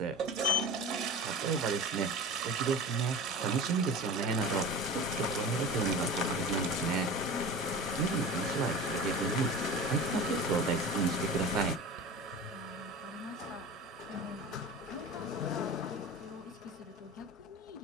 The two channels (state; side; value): normal; both; correlation 0.34